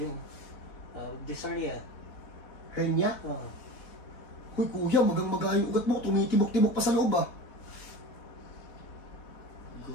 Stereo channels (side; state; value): right; late; 4.1 ms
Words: Dyspnea. Hernia? Huy, kuya, magang-maga yung ugat mo. Tumitibok-tibok pa sa loob, ah.